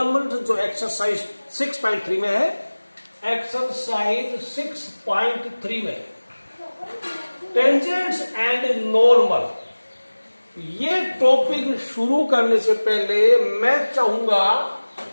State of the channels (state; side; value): inverted; both; correlation -1.00